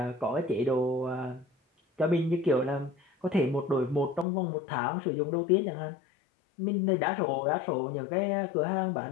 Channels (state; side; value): drops out; right; at 4.2 s